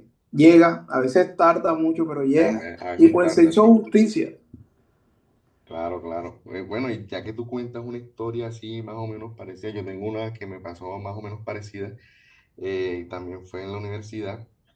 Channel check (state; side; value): identical; both; correlation 1.00